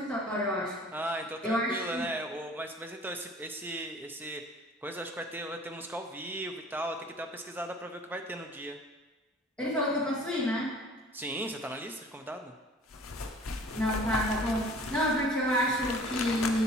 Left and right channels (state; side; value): normal; both; correlation 0.49